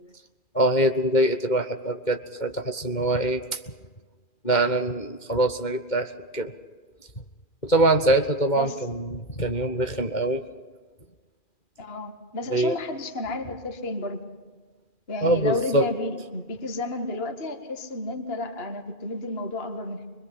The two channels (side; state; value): right; late; 2.2 ms